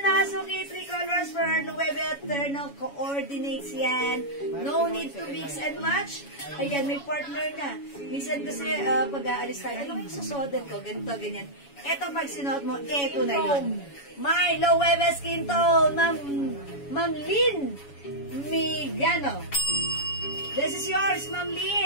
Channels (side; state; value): right; late; 7.1 ms